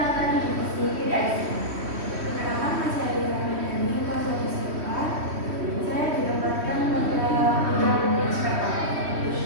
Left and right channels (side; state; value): left; late; 3.1 ms